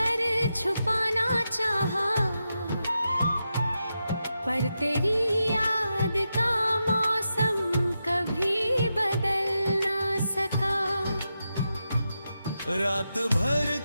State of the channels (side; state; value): both; inverted; correlation -0.88